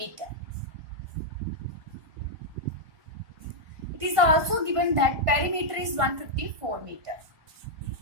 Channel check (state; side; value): late; left; 1.5 ms